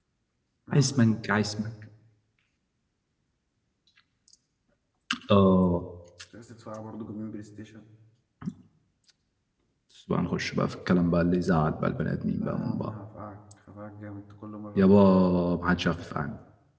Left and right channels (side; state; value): both; identical; correlation 1.00